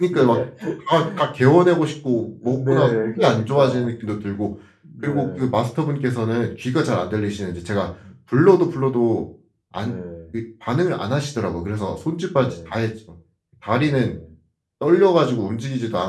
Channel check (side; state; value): both; identical; correlation 1.00